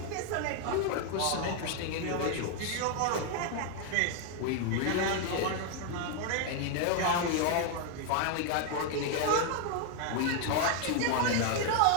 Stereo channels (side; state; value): both; different; correlation 0.00